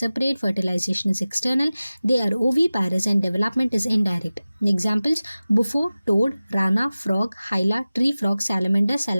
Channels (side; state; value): both; inverted; correlation -0.97